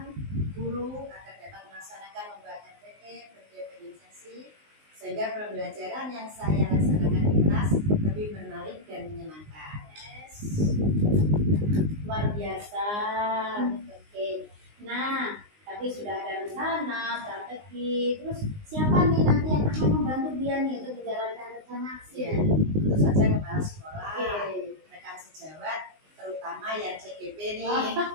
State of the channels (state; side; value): late; left; 19 ms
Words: guru agar dapat melaksanakan membuat RPP berdiferensiasi sehingga pembelajaran yang saya laksanakan di kelas lebih menarik dan menyenangkan. Luar biasa. Oke. Nah, tadi sudah ada rencana, strategi. Terus siapa nih nanti yang akan membantu Bu Yani untuk menjalankan rencana aksi? Ya, tentu saja kepala sekolah, Oke. rekan sejawat, terutama yang CGP nih,